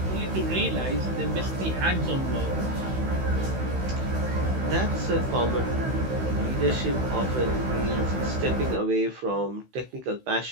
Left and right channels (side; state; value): left; late; 16 ms